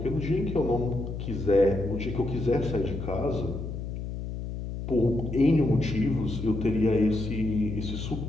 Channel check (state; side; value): noise; left; hum, 6 dB below the sound